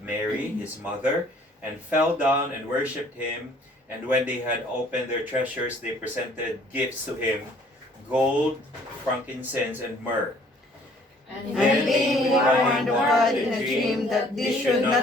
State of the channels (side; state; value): both; normal; correlation 0.58